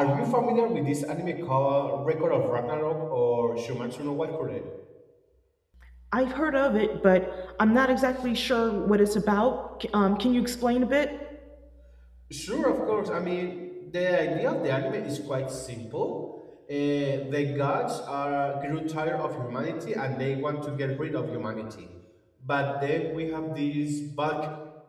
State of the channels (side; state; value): both; identical; correlation 1.00